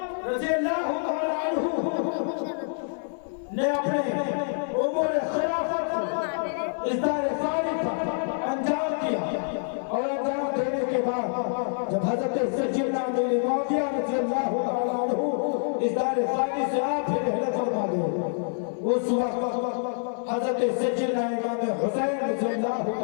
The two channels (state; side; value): silent; right; digital silence